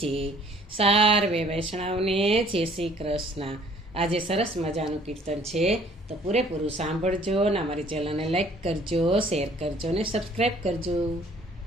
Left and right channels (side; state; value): both; normal; correlation 0.57